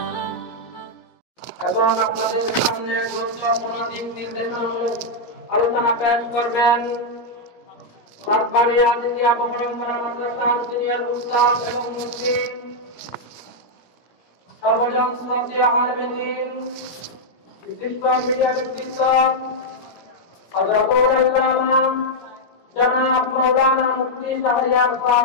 এবং আপনাদের সামনে গুরুত্বপূর্ণ দিক নির্দেশনামূলক আলোচনা পেশ করবেন সরকারি আজিজিয়া পরম্পরা মাদ্রাসার সিনিয়র উস্তাদ এবং মুফতি সর্বজন শ্রদ্ধেয় আলেম দ্বীন বিশিষ্ট মিডিয়া ব্যক্তিত্ব হযরতুল আল্লামা জনাব মাওলানা মুফতি শাহরিয়ার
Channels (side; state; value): right; late; 17 ms